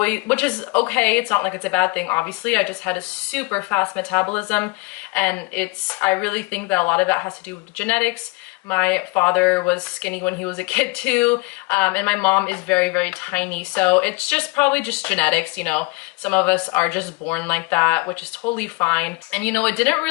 which is okay, it's not like it's a bad thing, obviously. I just had a super fast metabolism, and I really think that a lot of that has to do with genetics. My father was skinny when he was a kid too, and my mom is very, very tiny, so it's just probably just genetics. Some of us are just born like that, which is totally fine. And it didn't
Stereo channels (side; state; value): right; quieter; 26.4 dB